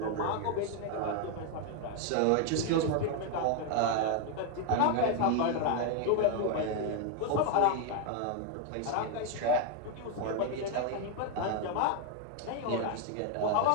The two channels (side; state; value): both; different; correlation 0.01